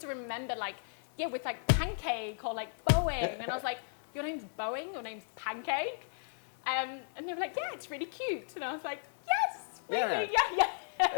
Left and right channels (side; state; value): right; silent; digital silence